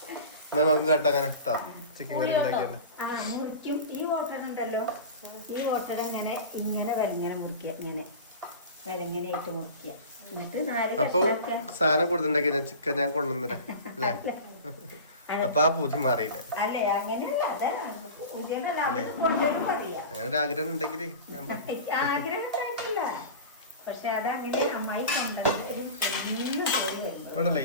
മുറിക്കും. ഈ ഓട്ടട ഉണ്ടല്ലോ, ഈ ഓട്ടട ഇങ്ങനെ വിലങ്ങനെ മുറിക്കുക, ഇങ്ങനെ വിലങ്ങനെയായിട്ട് മുറിക്കുക. എന്നിട്ട് 4 കഷ്ണാക്ക. സാധനം കൊടുത്തിട്ടുണ്ടെങ്കിൽ ചിക്കൻ ഞാൻ കൊണ്ടുവന്നിരാ അല്ലേ? അപ്പൊ ആ പൂതി മാറിയില്ലേ? അല്ലേ അങ്ങനെയല്ല, അതെ കൊണ്ടുവരും പറയാ. അങ്ങനെ ഒരു ആഗ്രഹം ഉണ്ടെങ്കിൽ ആഗ്രഹം കഴിച്ചില്ല. പക്ഷെ അതങ്ങനെ അമ്മായി കൊണ്ടുവരും. ഇവിടെ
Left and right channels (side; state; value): both; inverted; correlation -0.33